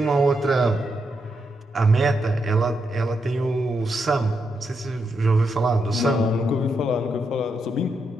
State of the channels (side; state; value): both; normal; correlation 0.82